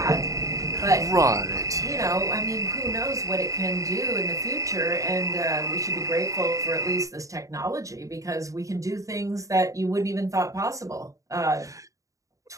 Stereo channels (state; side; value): late; left; 0.16 ms